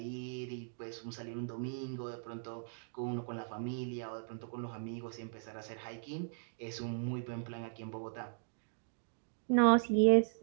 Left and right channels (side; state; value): left; silent; digital silence